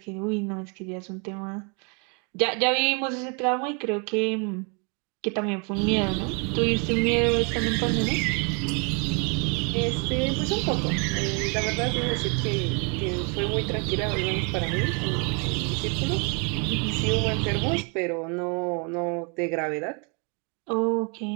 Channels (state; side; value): quieter; left; 35.1 dB